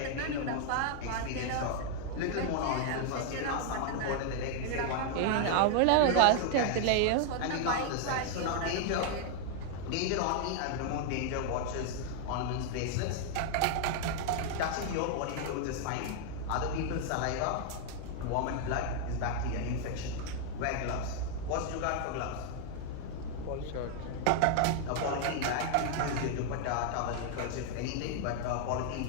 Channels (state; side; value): different; both; correlation 0.00